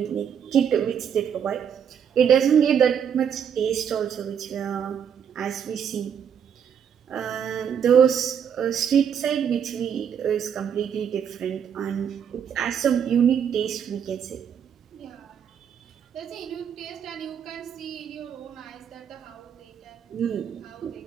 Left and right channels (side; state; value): left; quieter; 8.0 dB